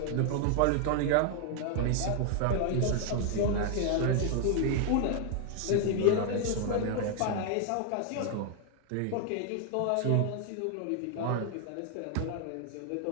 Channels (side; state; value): both; different; correlation 0.00